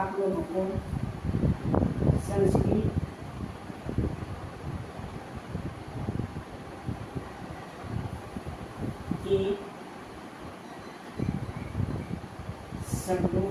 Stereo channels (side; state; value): both; identical; correlation 1.00